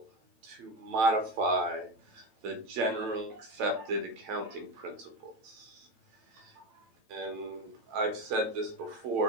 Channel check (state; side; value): late; left; 9.0 ms